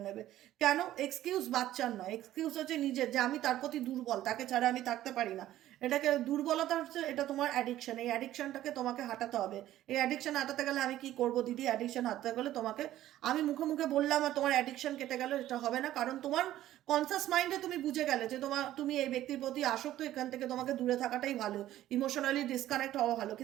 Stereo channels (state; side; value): quieter; left; 13.6 dB